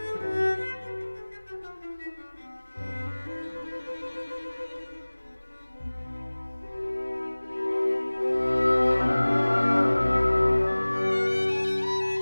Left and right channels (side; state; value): both; inverted; correlation -1.00